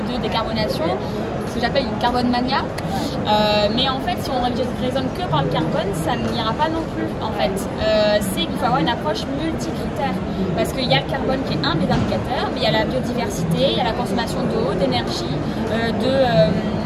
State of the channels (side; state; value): both; identical; correlation 1.00